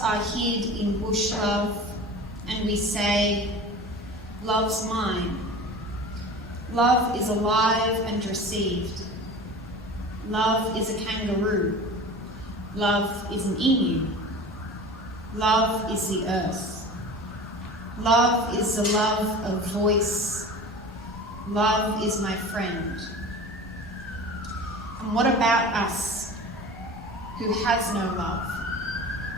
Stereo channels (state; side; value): normal; both; correlation 0.36